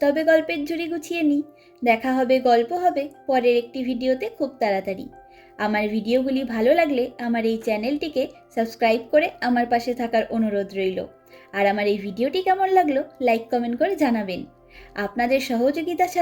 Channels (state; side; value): identical; both; correlation 1.00